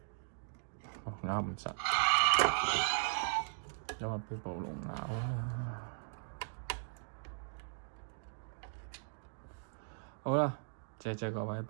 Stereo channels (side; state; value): left; silent; digital silence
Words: 咬唔實，因為飆暴龍啦。好啦，謝謝各位，